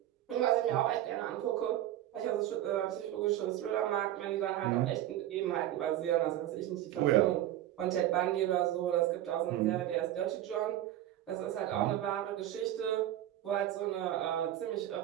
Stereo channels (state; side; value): quieter; left; 13.0 dB